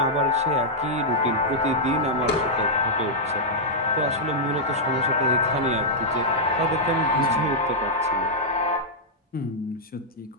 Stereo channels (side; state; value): both; normal; correlation -0.08